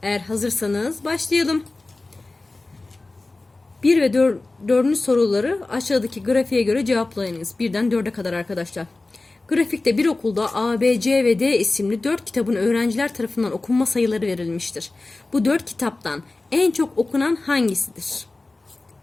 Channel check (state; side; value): quieter; right; 3.2 dB